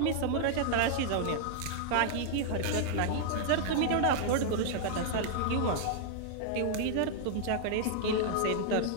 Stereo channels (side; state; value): both; different; correlation -0.01